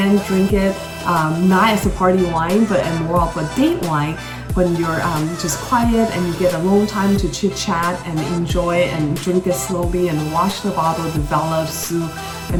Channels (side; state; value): both; identical; correlation 1.00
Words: drink it not as a party wine, but more of a date wine when you're just quiet and you get alone time to chit chat and enjoy and drink it slowly and watch the bottle develop through